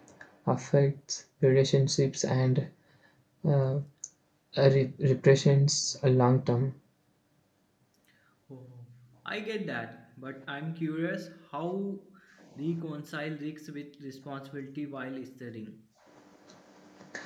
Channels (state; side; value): identical; both; correlation 1.00